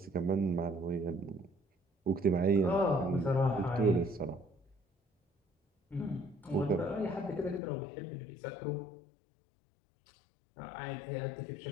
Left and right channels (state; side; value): drops out; right; at 7.6 s